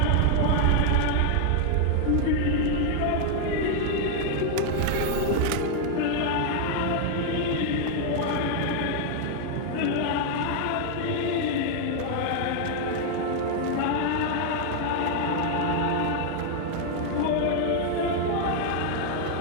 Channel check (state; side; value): different; both; correlation 0.00